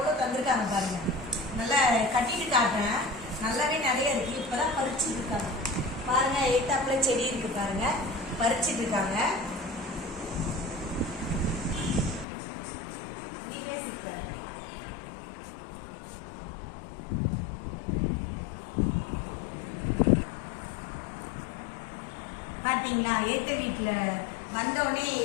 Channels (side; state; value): right; drops out; at 12.2 s